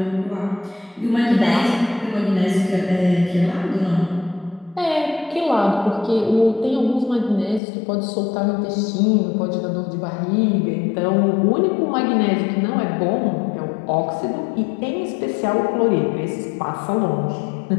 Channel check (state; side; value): drops out; right; at 7.6 s